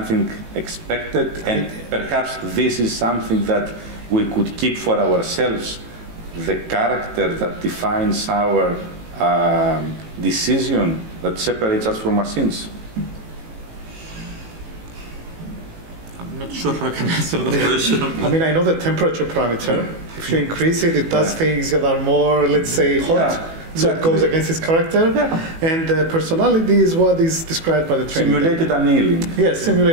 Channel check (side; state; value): left; late; 18 ms